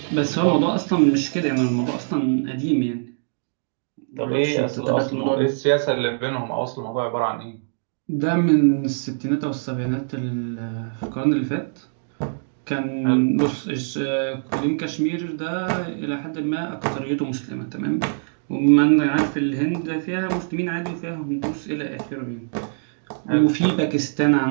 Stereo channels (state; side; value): silent; left; digital silence